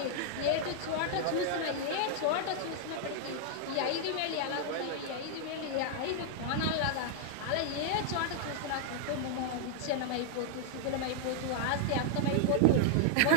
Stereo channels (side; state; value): both; different; correlation -0.01